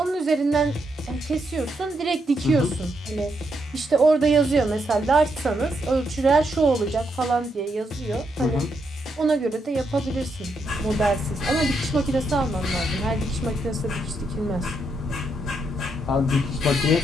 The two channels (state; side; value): normal; both; correlation 0.79